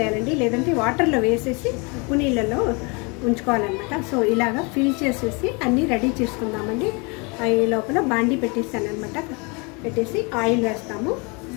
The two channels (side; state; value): right; quieter; 30.8 dB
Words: లేదంటే వాటర్లో వేసేసి ఉప్పు నీళ్ళలో ఉంచుకోవాలన్నమాట. సో ఇలాగా ఫిల్ చేసేసి అన్నీ రెడీ చేసుకుందామండి. ఈ లోపల బాండీ పెట్టేస్తాను అనమాట. పెట్టేసి ఆయిల్ వేస్తాము.